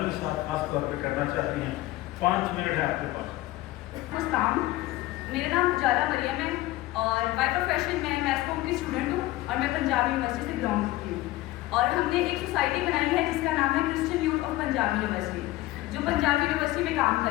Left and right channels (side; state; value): right; quieter; 17.5 dB